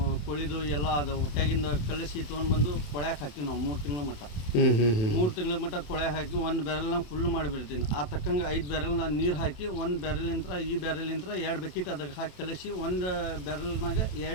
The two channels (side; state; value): right; late; 27 ms